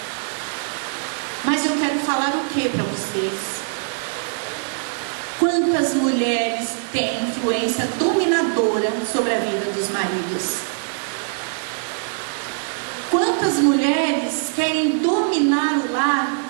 Mas eu quero falar o que para vocês? Quantas mulheres têm influência dominadora sobre a vida dos maridos? Quantas mulheres querem dominar o lar,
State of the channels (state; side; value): silent; left; digital silence